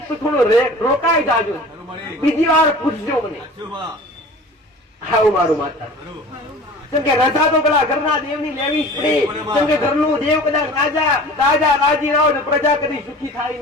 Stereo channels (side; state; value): both; normal; correlation 0.41